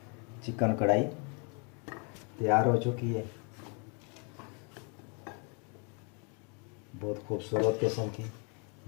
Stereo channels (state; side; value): quieter; right; 36.0 dB